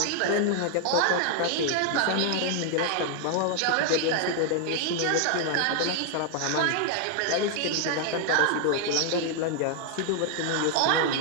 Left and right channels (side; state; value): both; different; correlation 0.00